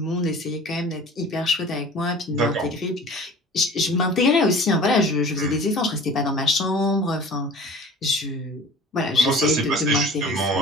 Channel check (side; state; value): both; normal; correlation 0.42